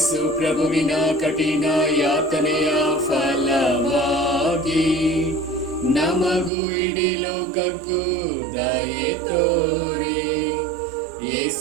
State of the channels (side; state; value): left; drops out; at 6.5 s